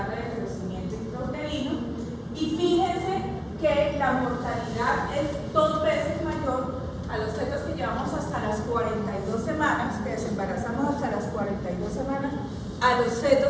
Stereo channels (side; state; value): both; identical; correlation 1.00